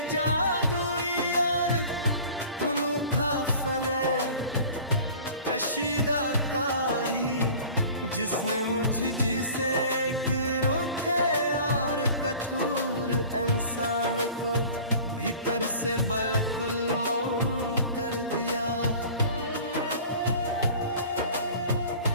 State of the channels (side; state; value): both; inverted; correlation -0.43